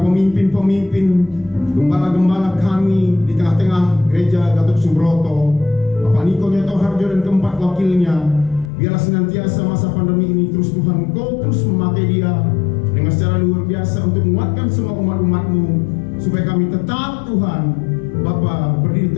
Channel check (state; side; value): drops out; right; at 8.7 s